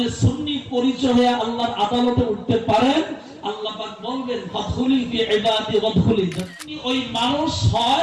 সুন্নি পরিচয় হয়ে আল্লাহর আদালতে উঠতে পারেন, আল্লাহ পাক বলবেন ফাদখুলি ফি ইবাদি ওয়াদখুলি জান্নাতি। ওই মানুষ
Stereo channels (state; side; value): identical; both; correlation 1.00